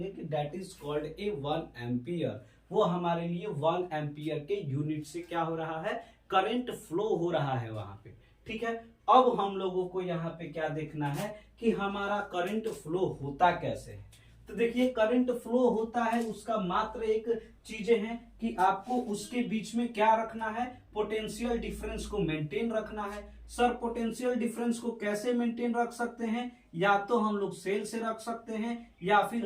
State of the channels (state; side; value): identical; both; correlation 1.00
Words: कि that is called A 1 ampere. वो हमारे लिए 1 एम्पियर के यूनिट से क्या हो रहा है, करंट फ्लो हो रहा है वहां पे। ठीक है, अब हम लोगों को यहाँ पे क्या देखना है कि हमारा करंट फ्लो होता कैसे है। तो देखिए, करंट फ्लो होता है उसका मात्र एक चीजें हैं कि आपको उसके बीच में क्या रखना है, पोटेंशियल डिफरेंस को मेंटेन रखना है। सर पोटेंशियल डिफरेंस को कैसे मेंटेन रख सकते हैं, या तो हम लोग सेल से रख सकते हैं या फिर